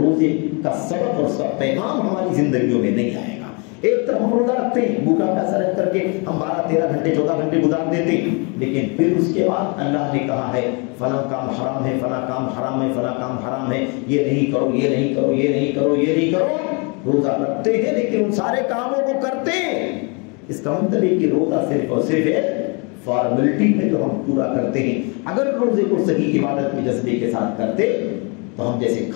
کا سبق اور اس کا پیغام ہماری زندگیوں میں نہیں آئے گا۔ ایک طرف ہم روزہ رکھتے ہیں، بھوکا پیاسا رہ کر کے ہم 12 13 گھنٹے 14 گھنٹے گزار دیتے ہیں، لیکن پھر اس کے بعد اللہ نے کہا ہے فلاں کام حرام ہے، فلاں کام حرام ہے، فلاں کام حرام ہے، یہ نہیں کرو، یہ نہیں کرو، یہ نہیں کرو، یہ نہیں کرو۔ روزہ رکھتے ہیں لیکن ان سارے کاموں کو کرتے ہیں، اس کا مطلب ہے کہ روزہ صرف اور صرف ایک فارمیلٹی ہے جو ہم پورا کرتے ہیں۔ اگر روزے کو صحیح عبادت کے جذبے کے ساتھ کرتے تو ہم جیسے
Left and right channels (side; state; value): right; quieter; 32.9 dB